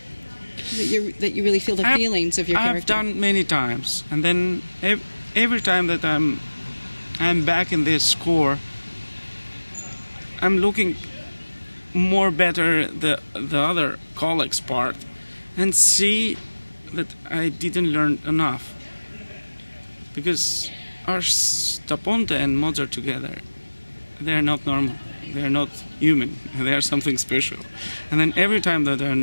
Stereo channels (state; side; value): inverted; both; correlation -1.00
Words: That you really feel the feelings of your character. I've done many times, and then every time that I'm back in this score, I'm looking more better the other colleagues' part, and see that I didn't learn enough. Because Ars da Ponte and Mozart together, they're not normal. They're not human. They are something special. And then every time that